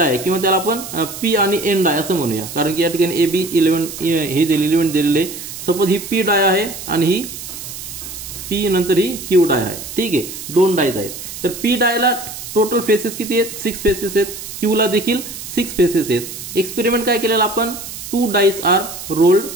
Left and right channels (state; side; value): noise; right; hiss, 10 dB below the sound